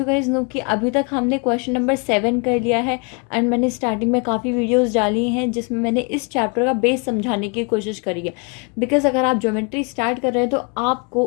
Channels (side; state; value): right; quieter; 33.8 dB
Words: गाइज नो कि अभी तक हमने क्वेश्चन नंबर 7 कर लिया है एंड मैंने स्टार्टिंग में काफ़ी वीडियोस डाली हैं जिसमें मैंने इस चैप्टर का बेस समझाने की कोशिश करी है। बिकॉज अगर आप ज्योमेट्री स्टार्ट कर रहे हैं तो आपको